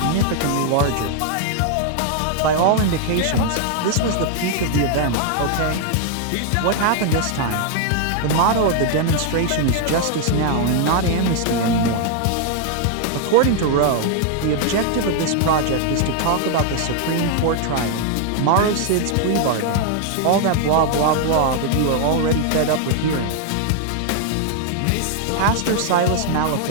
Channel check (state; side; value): different; both; correlation 0.00